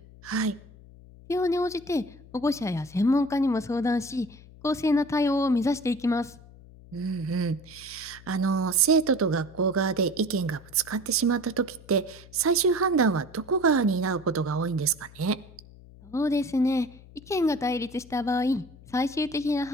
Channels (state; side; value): noise; left; hum, 21 dB below the sound